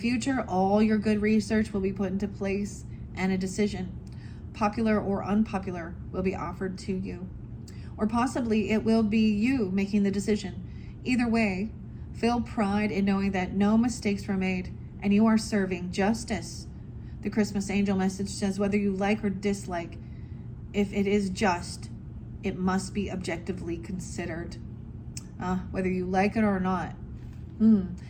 all your good research will be put into place and a decision, popular or unpopular, will be offered to you. Or possibly it will be you making the decision. Either way, feel pride in knowing that no mistakes were made and you are serving justice. The Christmas angel message says whether you like or dislike, if it is just, it must be objectively considered. Whether you like it or not.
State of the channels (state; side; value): identical; both; correlation 1.00